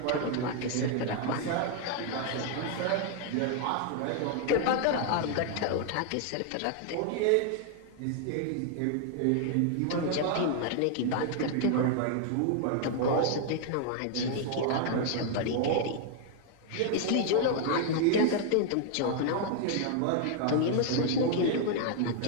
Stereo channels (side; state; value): both; different; correlation 0.00